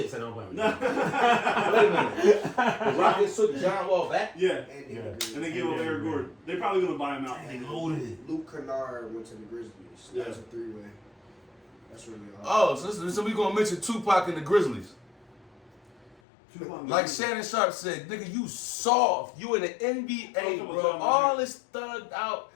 Said, don't blame me. Wait a minute. The Rockets took John Wall back? Yeah. And Danny Yeah. Green. And they gave him Eric Gordon. They probably going to buy him out. They loaded. Luke Kennard went to the Grizzlies. Yeah. That's a 3-way. That's really all. Oh, so we gonna mention Tupac and the Grizzlies. Like Shannon Sharp said, nigga, you soft. You in the NBA, bro. All this thugged out.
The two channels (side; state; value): right; drops out; at 16.2 s